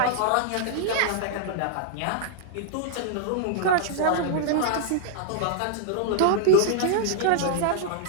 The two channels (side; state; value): both; different; correlation -0.01